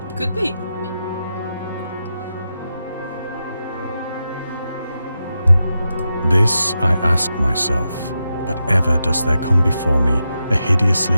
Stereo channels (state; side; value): inverted; both; correlation -0.88